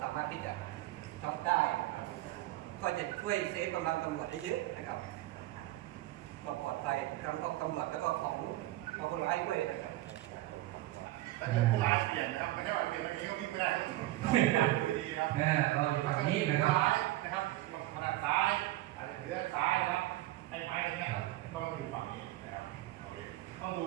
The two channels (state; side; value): quieter; left; 16.6 dB